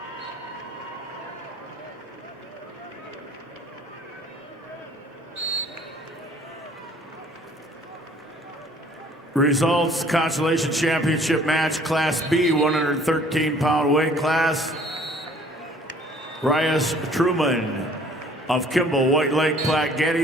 Results, Consolation Championship match, Class B, 113-pound weight class. Rias Truman of Kimball, White Lake, Platte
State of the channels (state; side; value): normal; both; correlation 0.55